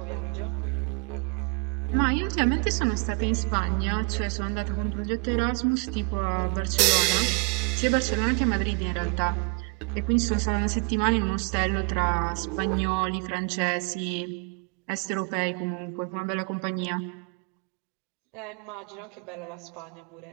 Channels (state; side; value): quieter; left; 33.5 dB